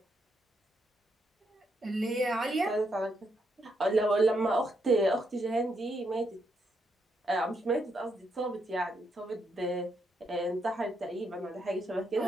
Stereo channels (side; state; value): both; normal; correlation 0.78